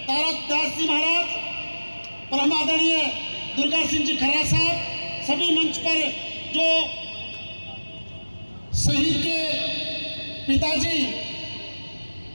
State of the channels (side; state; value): both; inverted; correlation -1.00